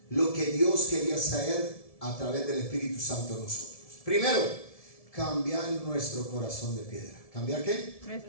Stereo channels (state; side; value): late; right; 1.7 ms